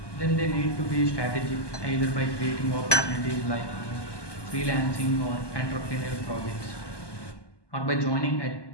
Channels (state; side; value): late; right; 1.2 ms